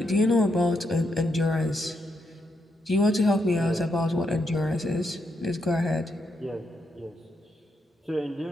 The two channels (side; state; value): both; normal; correlation 0.80